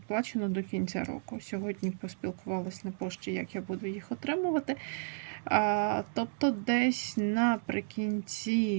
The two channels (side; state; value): left; silent; digital silence